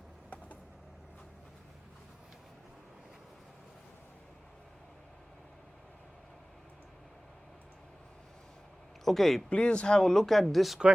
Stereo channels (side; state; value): both; normal; correlation 0.97